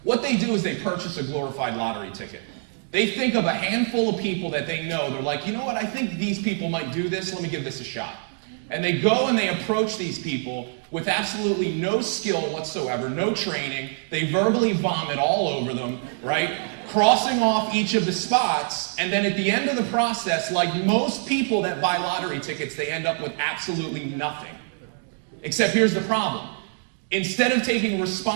What they do is they purchase a glorified lottery ticket. They think of a handful of people that they know. They're like, you know what, I think these people might do this. Let me give this a shot. And they go and they approach these people with absolutely no skill whatsoever, no training. They verbally vomit all over them, right? Crossing off each of the spots. And then at the end of the process, like most people that buy lottery tickets, they end up with absolutely nothing. Except here's the problem. Instead of taking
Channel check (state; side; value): silent; left; 58 dB below the other